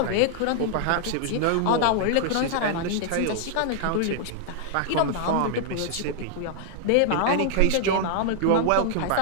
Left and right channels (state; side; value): different; both; correlation -0.01